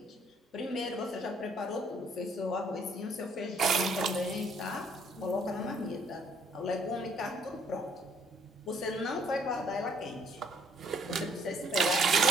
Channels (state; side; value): normal; both; correlation 0.65